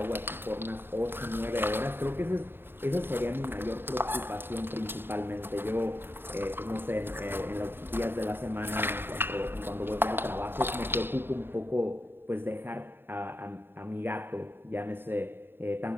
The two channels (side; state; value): left; late; 0.10 ms